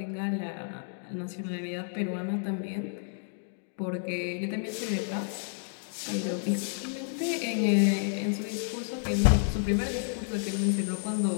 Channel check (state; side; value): silent; right; 57 dB below the other